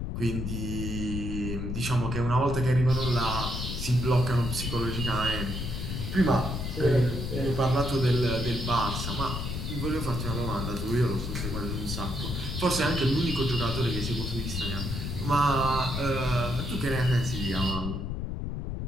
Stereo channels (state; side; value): noise; left; rumble, 4 dB below the sound